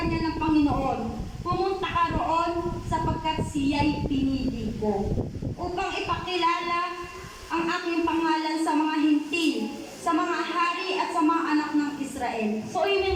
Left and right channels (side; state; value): both; identical; correlation 1.00